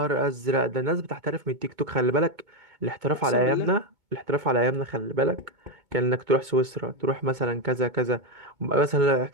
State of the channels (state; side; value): late; left; 2.2 ms